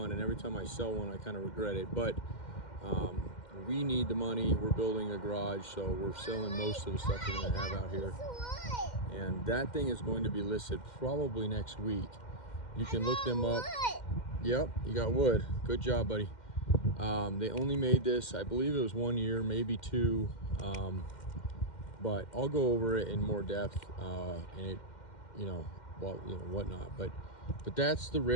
and every time I sell one I kind of regret it, but we need the money. We're building a garage, so we're selling most of the stuff we're going to have out here. And that thing is going to be listed probably next week. You can look them up. Yep, you got wood. Good job, buddy. They only made this, I believe it was 1 year, maybe 2. But I'll go over it in more depth, and it, whatnot. But that's the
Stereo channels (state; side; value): late; right; 2.1 ms